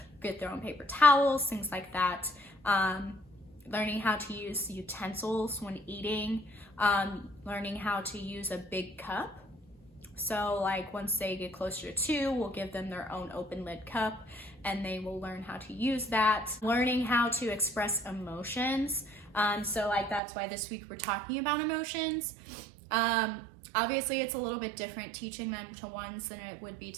get their own paper towels, things like that. Learning how to use utensils when eating, learning how to use a big cup. So like once they get closer to 2, we'll give them their own open lid cup, and they will learn how to use that. Learning how to express emotions. So like that's why this week we're talking about emotions. Obviously it's a little bit different teaching them to ones than it would be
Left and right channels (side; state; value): left; drops out; at 20.2 s